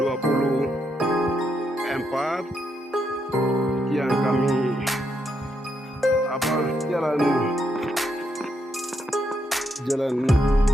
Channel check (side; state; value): both; normal; correlation 0.79